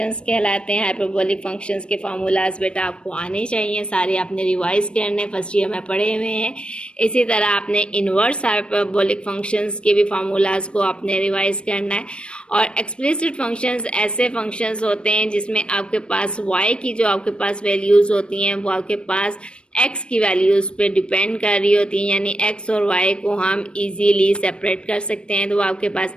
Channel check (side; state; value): right; late; 0.057 ms